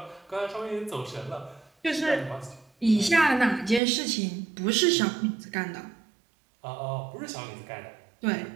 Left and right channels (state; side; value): drops out; left; at 3.8 s